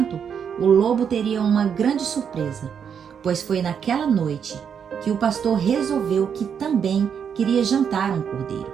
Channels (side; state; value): left; quieter; 7.5 dB